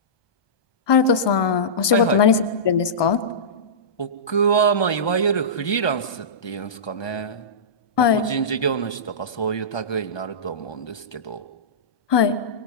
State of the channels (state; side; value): late; right; 1.2 ms